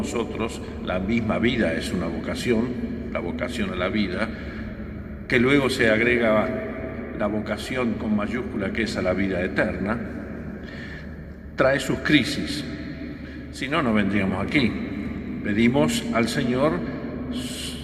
la misma vida es una vocación, la vocación a la vida, que luego se agrega la vocación con mayúscula que es a la vida eterna, trae sus crisis. Si no, no vendríamos aquí. Pedimos al Señor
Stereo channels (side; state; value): both; identical; correlation 1.00